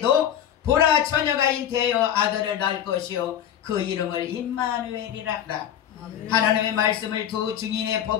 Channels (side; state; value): right; quieter; 10.2 dB